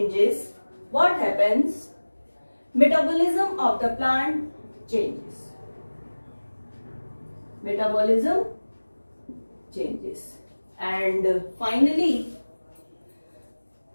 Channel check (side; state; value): both; inverted; correlation -1.00